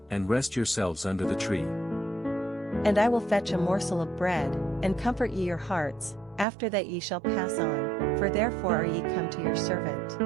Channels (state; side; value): drops out; left; at 6.5 s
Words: and rest yourselves under the tree. And I will fetch a morsel of bread, and comfort ye your hearts, after that ye shall pass on, for therefore are ye come to your servant.